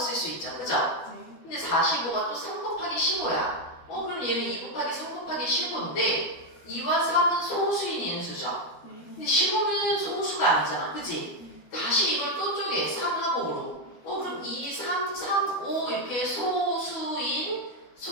수 있죠. 그죠? 근데 45가 또 3 곱하기 15야. 그럼 얘는 2 곱하기 3 곱하기 15인데 2와 3은 소수인 인수죠. 근데 15는 소수가 아니잖아. 그지? 다시 이걸 또 쪼개. 3하고 5로. 그럼 2, 3, 3, 5 이렇게 소수인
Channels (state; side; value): late; right; 12 ms